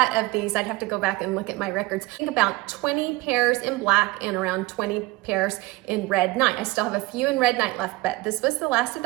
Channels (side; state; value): left; quieter; 20.7 dB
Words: of these. I'd have to go back and look at my records. I think about 20 pairs in black and around 20 pairs in red night. I still have a few in red night left, but this was the last of